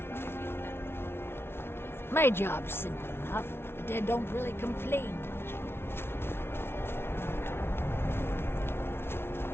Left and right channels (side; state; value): right; late; 0.12 ms